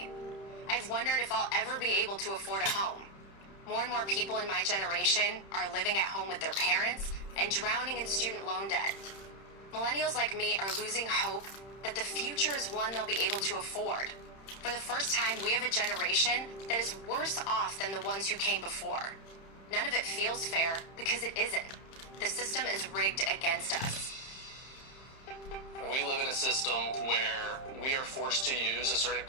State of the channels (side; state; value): right; late; 31 ms